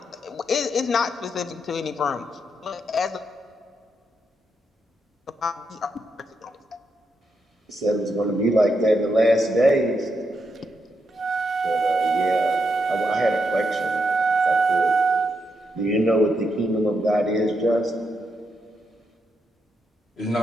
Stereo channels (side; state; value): both; normal; correlation 0.82